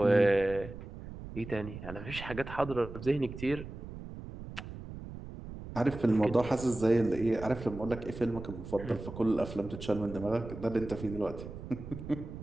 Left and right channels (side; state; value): right; noise; rumble, 11 dB below the sound